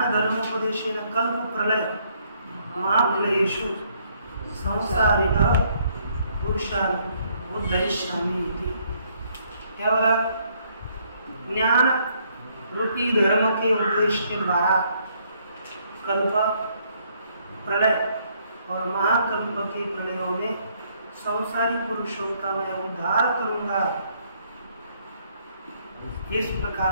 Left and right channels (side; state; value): both; inverted; correlation -0.69